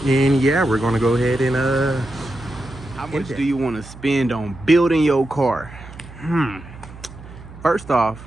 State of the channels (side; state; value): right; noise; hum, 17 dB below the sound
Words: and yeah, we're gonna go ahead and How much do you want to spend on building your car? First off,